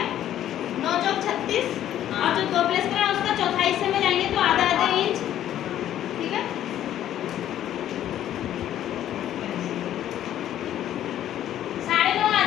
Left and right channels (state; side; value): quieter; right; 11.7 dB